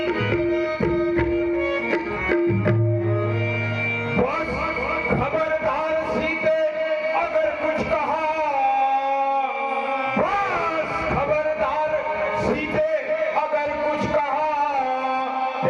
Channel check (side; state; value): both; identical; correlation 1.00